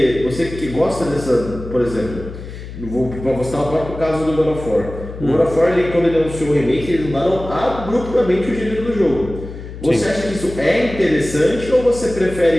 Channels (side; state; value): left; noise; hum, 12 dB below the sound